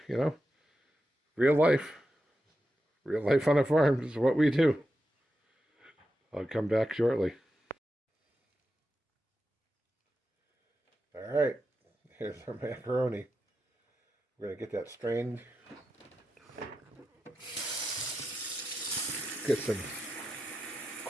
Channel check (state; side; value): normal; both; correlation 0.89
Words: know, real life. Real life on a farm is what we do. I'll come back shortly. All right. Here's our macaroni. We're going to get that strained. Get some